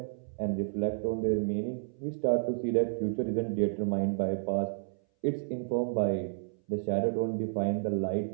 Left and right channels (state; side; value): silent; left; 57 dB below the other